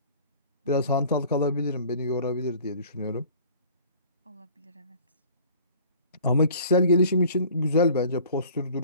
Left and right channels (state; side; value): inverted; both; correlation -0.49